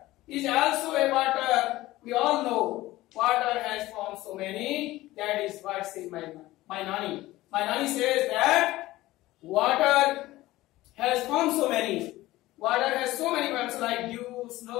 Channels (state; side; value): quieter; right; 17.3 dB